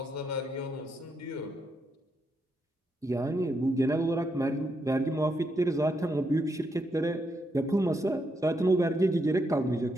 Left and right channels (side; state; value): both; normal; correlation 0.80